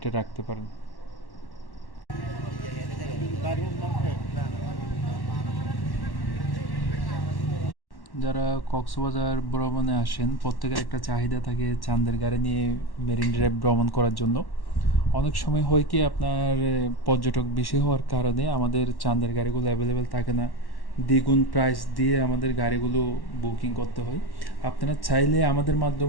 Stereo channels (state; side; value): late; right; 1.1 ms